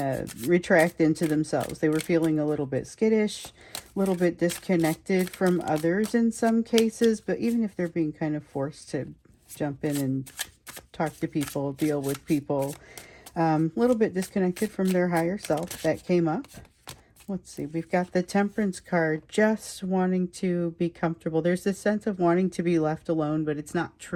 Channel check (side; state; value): both; identical; correlation 1.00